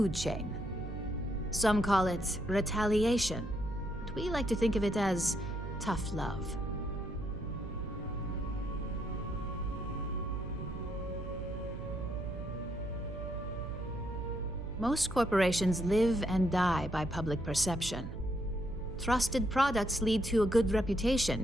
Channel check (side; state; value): right; noise; hum, 9 dB below the sound